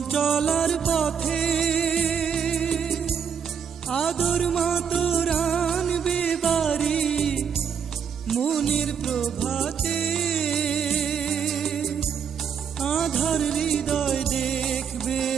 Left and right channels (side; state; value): left; quieter; 7.3 dB